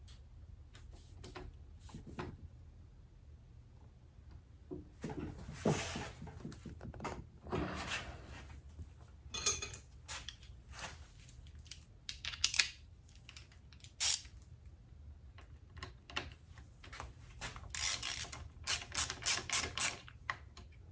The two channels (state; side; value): identical; both; correlation 1.00